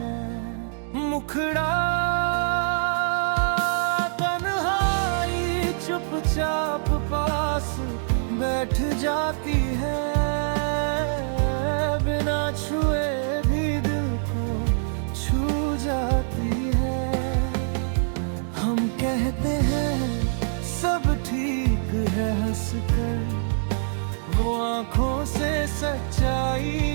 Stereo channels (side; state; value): left; silent; digital silence